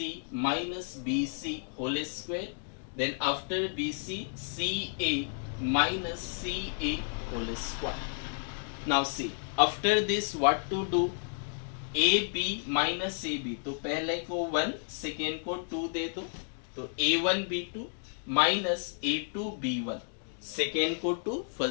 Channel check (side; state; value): right; silent; digital silence